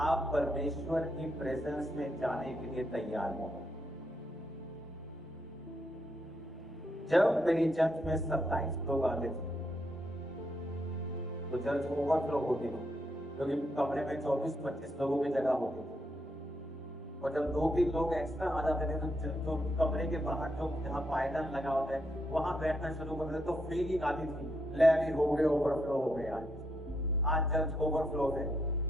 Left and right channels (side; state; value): both; normal; correlation 0.78